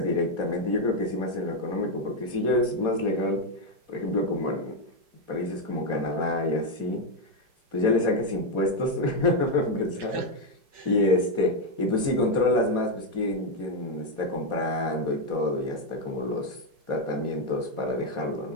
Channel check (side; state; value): left; late; 4.2 ms